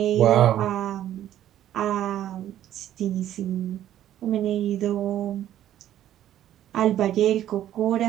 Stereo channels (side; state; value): left; quieter; 11.9 dB